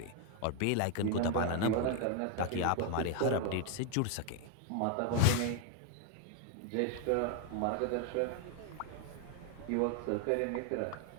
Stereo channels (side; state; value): both; different; correlation 0.01